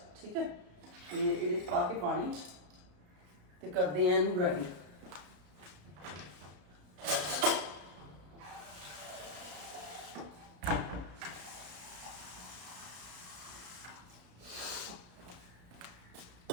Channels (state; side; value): late; left; 33 ms